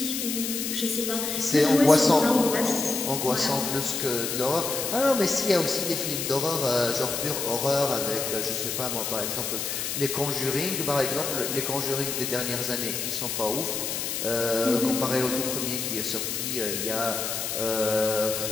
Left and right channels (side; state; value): left; noise; hiss, 3 dB below the sound